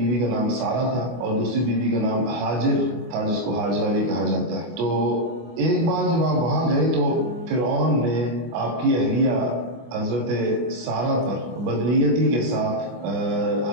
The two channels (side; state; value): left; late; 25 ms